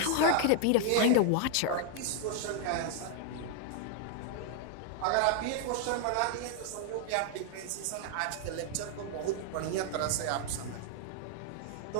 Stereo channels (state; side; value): different; both; correlation 0.00